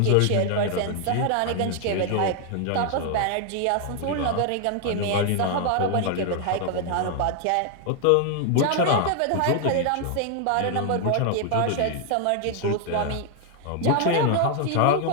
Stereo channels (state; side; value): different; both; correlation 0.00